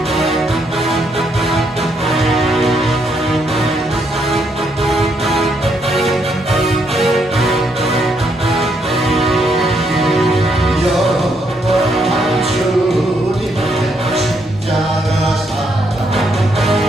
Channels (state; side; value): normal; both; correlation 0.75